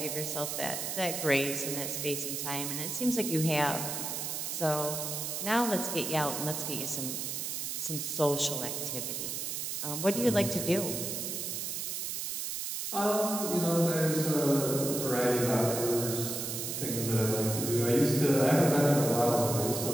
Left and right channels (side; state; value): right; noise; hiss, 3 dB below the sound